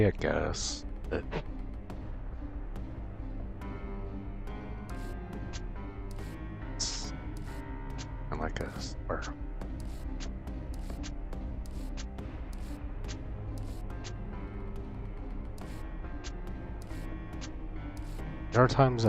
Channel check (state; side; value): identical; both; correlation 1.00